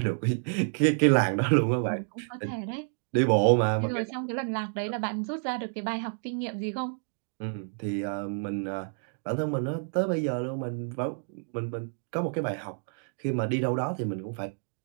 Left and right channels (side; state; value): left; silent; 58 dB below the other